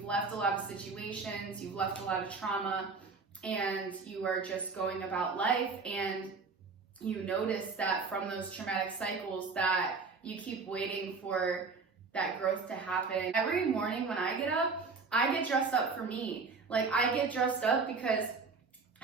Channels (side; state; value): left; quieter; 4.5 dB